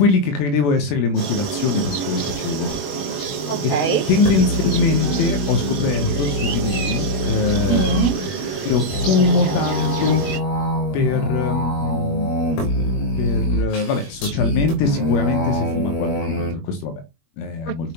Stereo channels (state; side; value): late; right; 21 ms